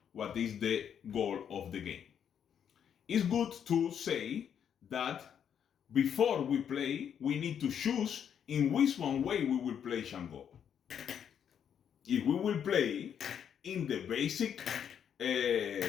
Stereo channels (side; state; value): right; quieter; 8.4 dB